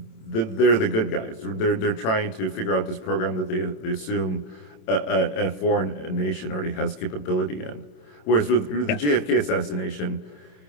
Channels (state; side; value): late; right; 27 ms